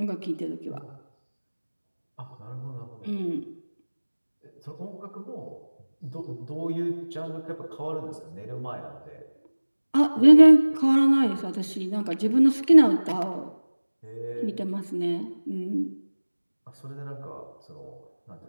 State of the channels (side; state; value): both; inverted; correlation -1.00